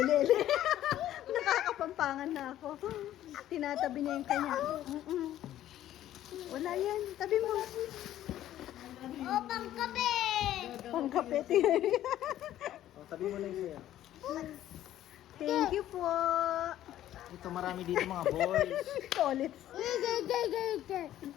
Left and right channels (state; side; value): quieter; right; 12.7 dB